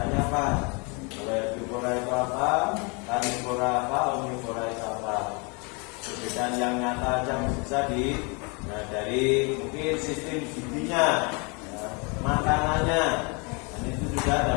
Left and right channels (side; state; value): right; quieter; 31.8 dB